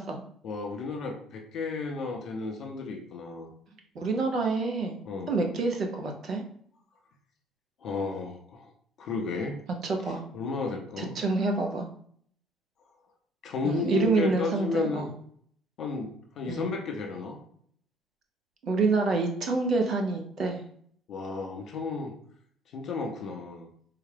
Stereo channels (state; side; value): normal; both; correlation 0.58